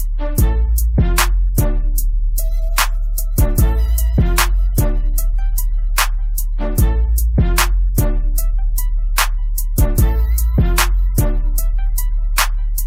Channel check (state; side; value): identical; both; correlation 1.00